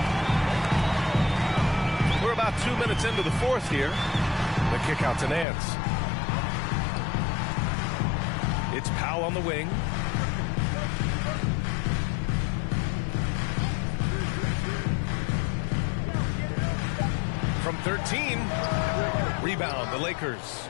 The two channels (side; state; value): right; drops out; at 5.5 s